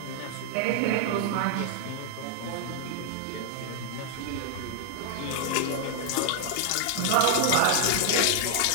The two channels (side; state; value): both; different; correlation 0.00